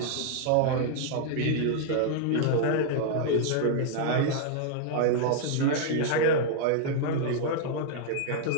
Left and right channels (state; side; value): different; both; correlation -0.01